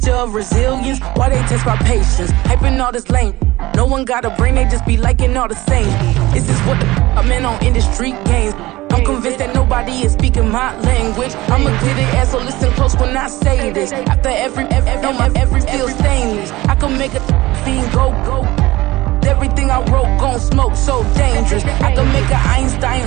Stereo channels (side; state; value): left; quieter; 18.8 dB